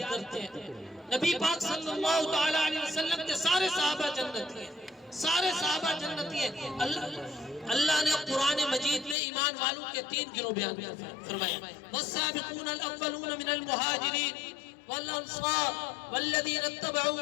کرتے ہیں. نبی پاک صلی اللہ تعالی علیہ وسلم کے سارے صحابہ جنتی ہیں، سارے صحابہ جنتی ہیں. اللہ نے قرآن مجید میں ایمان والوں کے 3 گروہ بیان فرمائے. والسابقون الاولون من المہاجرین والانصار والذین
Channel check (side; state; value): right; drops out; at 9.2 s